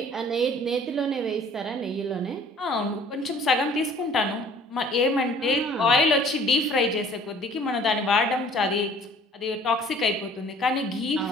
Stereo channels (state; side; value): normal; both; correlation 0.53